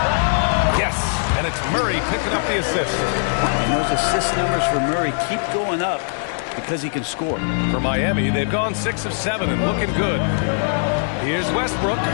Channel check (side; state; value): right; silent; 65 dB below the other